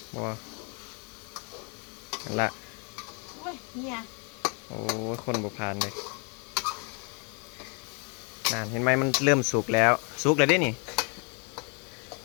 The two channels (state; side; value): quieter; right; 36.0 dB